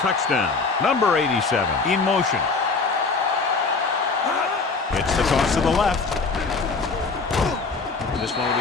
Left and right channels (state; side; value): quieter; right; 4.3 dB